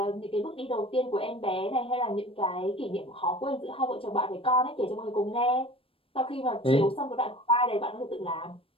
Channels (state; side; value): late; right; 0.27 ms